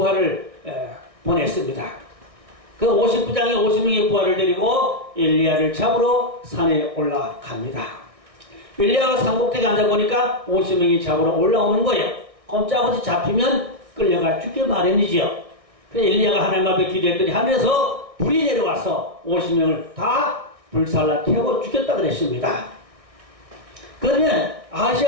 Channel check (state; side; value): late; left; 1.6 ms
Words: 보냈습니다. 그 50부장이 50명의 부하를 데리고 엘리야를 잡으러 산에 올라갑니다. 엘리야가 산꼭대기에 앉아보니까 50명이 잡으러 올라오는 거예요. 꼼짝없이 잡히면 끌려가 죽게 마련이지요. 그래서 엘리야가 하나님 앞에 기도했더니 하늘에서 불이 내려와서 50명을 다 불살라 태워 죽였다 그랬습니다. 그러면